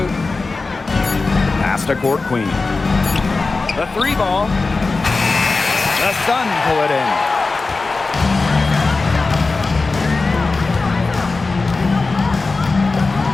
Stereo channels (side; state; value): right; quieter; 3.8 dB